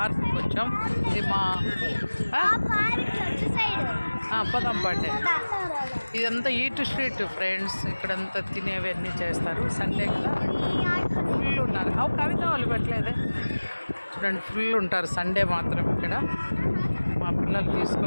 వచ్చాం. ఇది మా పదం పాటే. ఇదంతా ఈట్ స్ట్రీట్ ఫ్రెండ్స్. ఇక్కడంతా తినేవన్నీ చేస్తారు. సండే కదా ఫుల్ ఉన్నారు. కవిత వాళ్ళు పెట్టలేదే. చూడండి ఫుల్ ఉంటారు సండే మాత్రం ఇక్కడ. మా పిల్లలు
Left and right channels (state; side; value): inverted; both; correlation -1.00